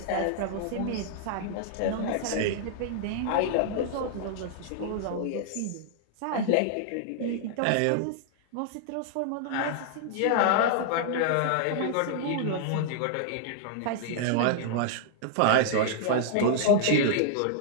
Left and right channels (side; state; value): both; different; correlation -0.01